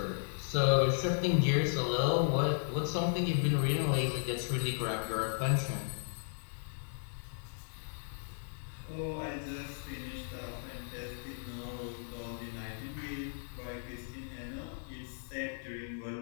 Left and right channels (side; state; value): right; silent; digital silence